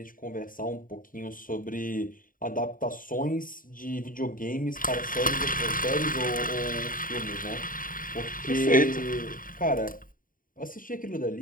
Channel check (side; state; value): right; late; 0.40 ms